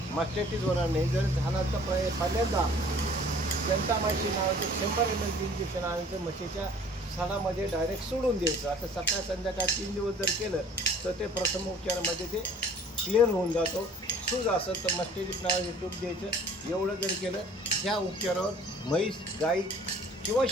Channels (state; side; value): normal; both; correlation 0.51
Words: मस्टायटिस होणार नाही। जर झाला तर पहिल्यांदा जंटामायसिन नावाचं 100 ml इंजेक्शन आणायचं, म्हशीच्या सणामध्ये डायरेक्ट सोडून द्यायचं। आता सकाळ संध्याकाळ 3 दिवस जर केलं तर ते प्रथम उपचारामध्ये ते क्लिअर होऊन जातो। सूज असेल तर मस्टायटिस नावाचे तूप द्यायचं। एवढं जर केलं, ह्या उपचारावर म्हैस, गाई किंवा